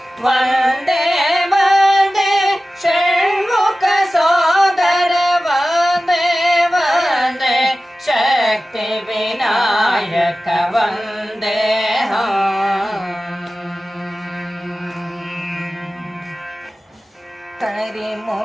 ವಂದೇ ವಂದೇ ಷಣ್ಮುಖ ಸೋದರ ವಂದೇ ವಂದೇ ಶಕ್ತಿ ವಿನಾಯಕ ವಂದೇಹಂ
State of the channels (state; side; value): normal; both; correlation 0.96